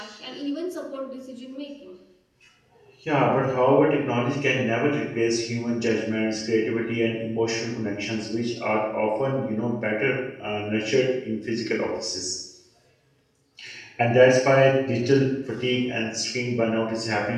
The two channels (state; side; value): identical; both; correlation 1.00